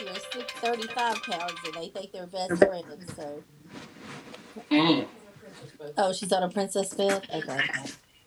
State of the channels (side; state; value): both; identical; correlation 1.00